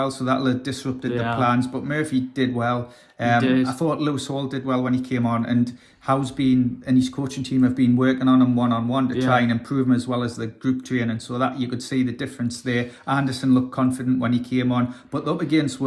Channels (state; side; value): identical; both; correlation 1.00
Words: So that'll have disrupted the plans. But Murphy did well. I thought Lewis Hall did well when he came on, and Howe's been and his coaching team have been working on him one-on-one to try and improve him, as well as the group training, so that you could see the difference there. Anderson looked confident when he came on, but up against